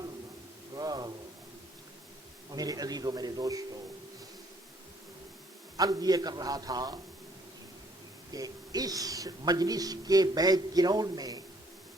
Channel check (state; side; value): normal; both; correlation 0.63